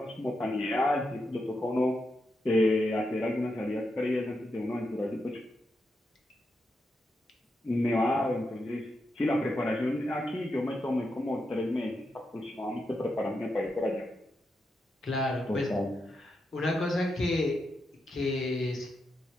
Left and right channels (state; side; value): normal; both; correlation 0.85